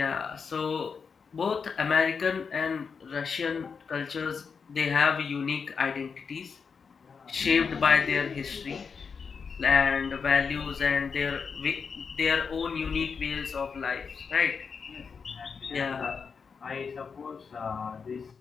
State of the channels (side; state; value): right; quieter; 5.7 dB